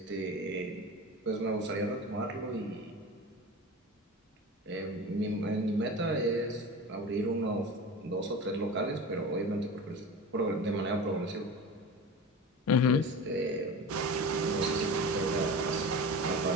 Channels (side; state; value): both; normal; correlation 0.31